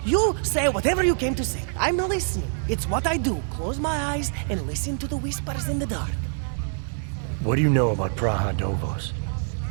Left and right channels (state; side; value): silent; left; 62 dB below the other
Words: you say whatever you came to say. I'm listening. It's what I do. Close my eyes and listen to the whispers in the dark. What do you know about Praha Dovos?